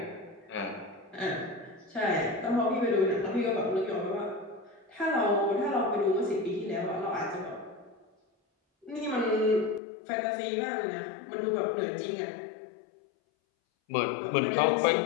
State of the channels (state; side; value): drops out; right; at 9.8 s